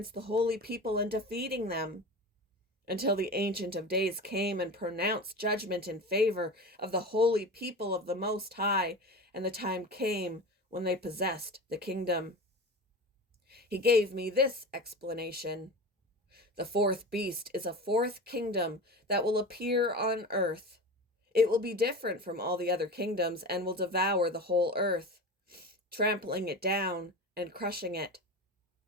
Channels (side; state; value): both; normal; correlation 0.30